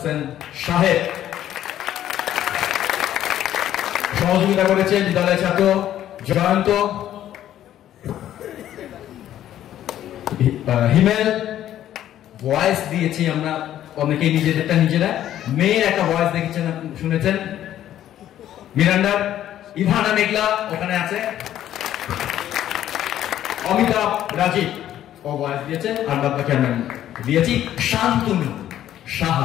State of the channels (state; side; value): quieter; right; 11.9 dB